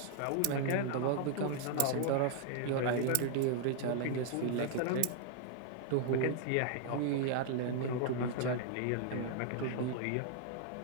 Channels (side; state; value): both; different; correlation -0.01